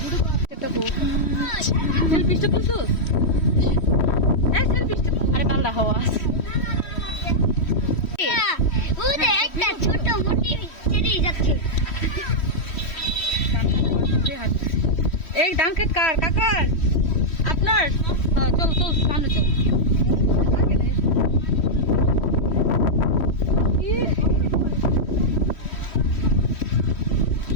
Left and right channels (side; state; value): right; late; 3.1 ms